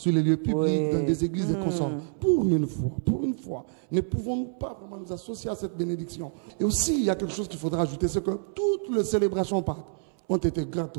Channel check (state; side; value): silent; left; 60 dB below the other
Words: les lieux publics, dans des églises et consorts. Pour une fois, ne pouvons-nous pas vraiment nous associer à cette bénédiction? Et aussi, il y a quelque chose qu'il faudra ajouter, c'est que toutes les célébrations Pâques ont été